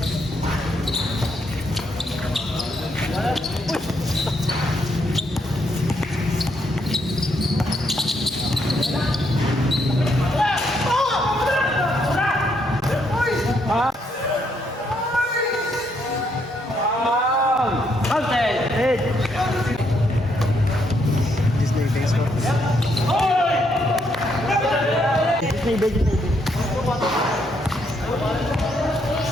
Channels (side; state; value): both; normal; correlation 0.74